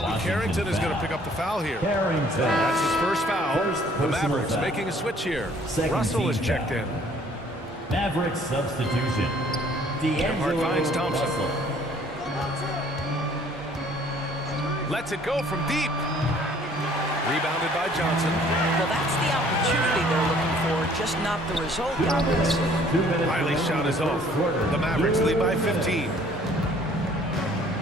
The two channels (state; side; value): normal; both; correlation 0.57